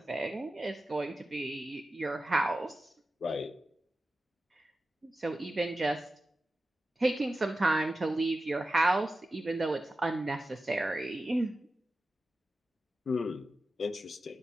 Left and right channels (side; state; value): both; normal; correlation 0.93